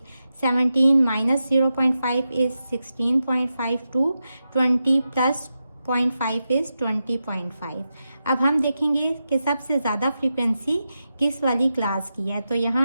17 minus 0.5 is 16.5 to 20 plus 0.5 is 20.5। अब हम देखेंगे कि सबसे ज़्यादा फ्रीक्वेंसी किस वाली क्लास की है। तो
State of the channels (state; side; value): inverted; both; correlation -0.89